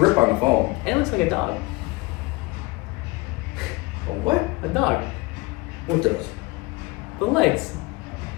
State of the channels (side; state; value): right; quieter; 23.3 dB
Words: on the phone. And it looks like a dog. A what? A dog. What does? The legs.